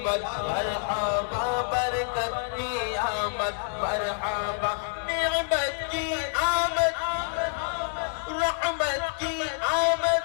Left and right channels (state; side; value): silent; right; digital silence